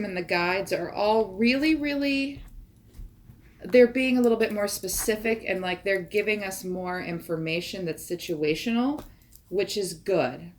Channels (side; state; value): both; identical; correlation 1.00